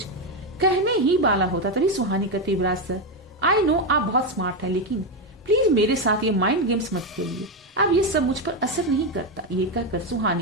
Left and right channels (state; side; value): normal; both; correlation 0.08